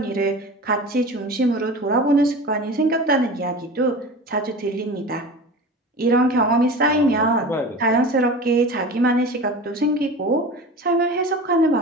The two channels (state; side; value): normal; both; correlation 0.34